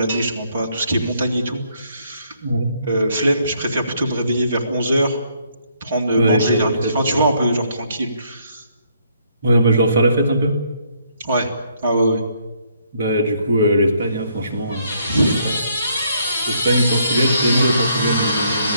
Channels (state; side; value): inverted; both; correlation -0.70